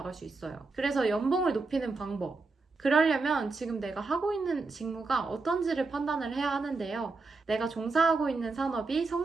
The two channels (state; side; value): quieter; left; 3.8 dB